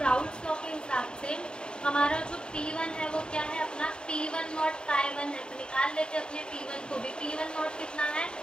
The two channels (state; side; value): late; right; 0.050 ms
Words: राउल्ट्स लॉ के हिसाब से हमारा जो P1 है वो क्या है, अपना P10 Ki1 है। तो निकाल लेते हैं अपने P1 को भी। P10 कितना है,